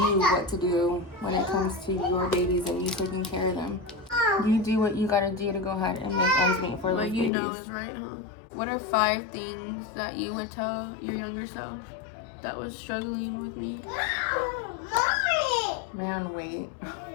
what to do when it comes to your babies and you taking care of them. You do what you gotta do to go ahead and make ends meet for those babies. You know is right, huh? What are 5 things that you would tell your younger self that was struggling with me? Man, wait.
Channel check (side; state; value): right; drops out; at 7.3 s